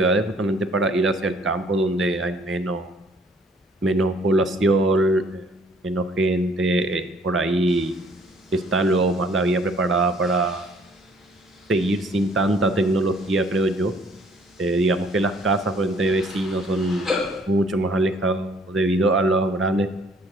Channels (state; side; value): normal; both; correlation 0.59